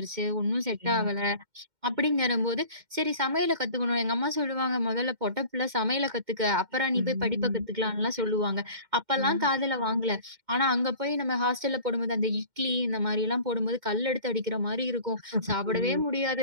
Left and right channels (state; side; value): late; left; 2.1 ms